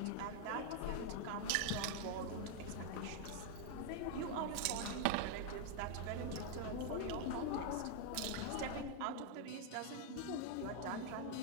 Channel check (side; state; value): both; different; correlation 0.00